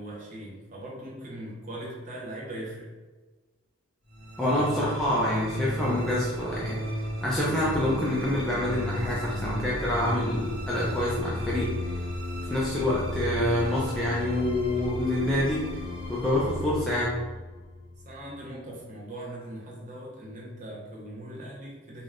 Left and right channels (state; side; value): normal; both; correlation 0.50